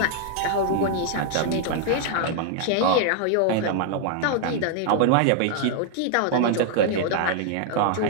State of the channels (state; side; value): different; both; correlation 0.00